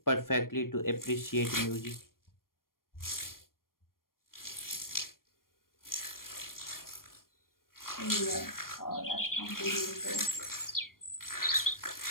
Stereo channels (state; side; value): late; right; 0.91 ms